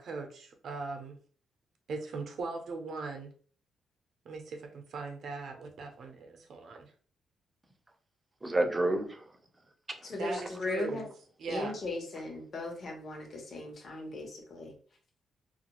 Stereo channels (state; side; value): normal; both; correlation 0.84